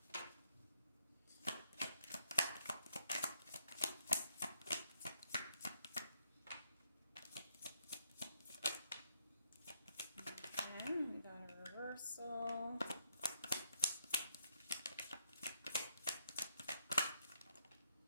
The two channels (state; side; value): inverted; both; correlation -0.75